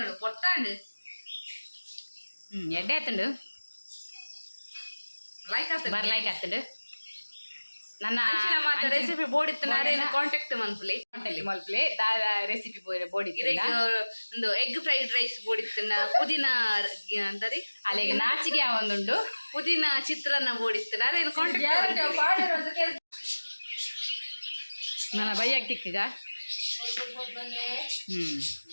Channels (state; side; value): inverted; both; correlation -1.00